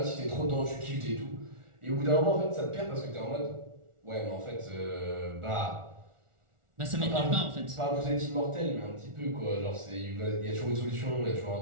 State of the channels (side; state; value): left; late; 1.4 ms